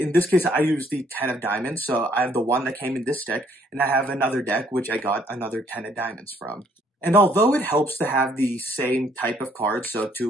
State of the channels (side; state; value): both; normal; correlation 0.65